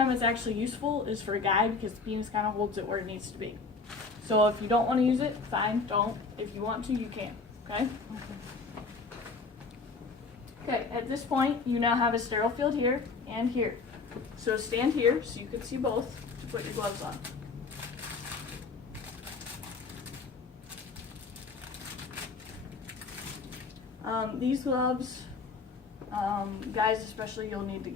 it's actually useful is for a guide, because the penis kind of holds it where it needs to be. So if you don't want to use it, fine, don't. If you want to, you can, okay? Okay, at this point, you now have a sterile field here and here. So stand here so you can see both to put your gloves on. These gloves, guys especially, you'll need to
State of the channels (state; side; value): quieter; right; 4.3 dB